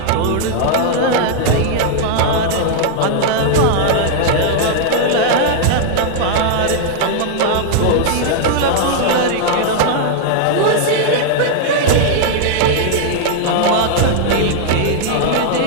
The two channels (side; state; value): both; different; correlation 0.00